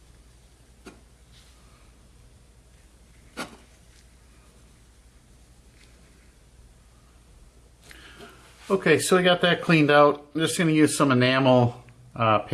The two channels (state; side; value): identical; both; correlation 1.00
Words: Okay, so we got that cleaned out. I'm just going to use some enamel